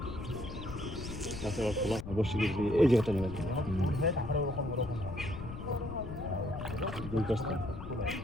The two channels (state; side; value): noise; left; rumble, 9 dB below the sound